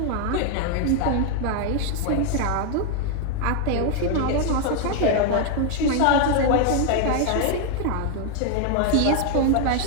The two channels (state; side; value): different; both; correlation 0.00